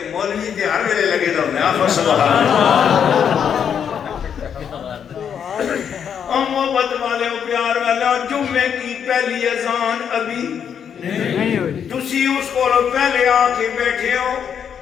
مولوی تے ہر ویلے لگے دا ہوندے آپ سبحان محبت والے پیار والا. جمعے کی پہلی اذان ابھی نہیں ہوئی تسی اس کو پہلے آ کے بیٹھے ہو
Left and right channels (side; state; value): right; quieter; 7.9 dB